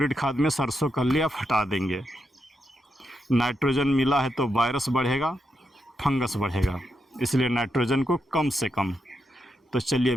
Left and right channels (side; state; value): both; normal; correlation 0.84